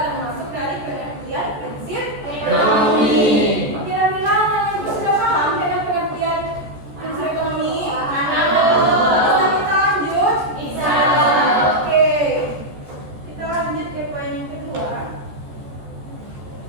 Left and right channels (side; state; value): left; late; 14 ms